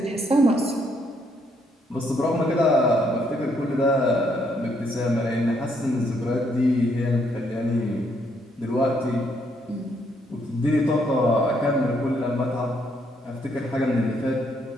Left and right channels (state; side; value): normal; both; correlation 0.72